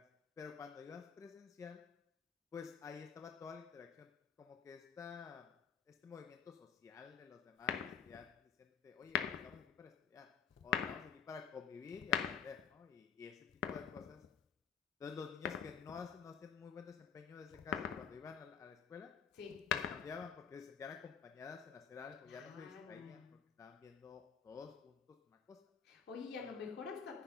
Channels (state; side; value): quieter; right; 7.3 dB